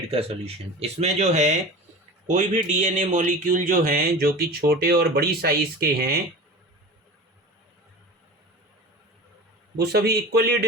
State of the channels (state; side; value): normal; both; correlation 0.34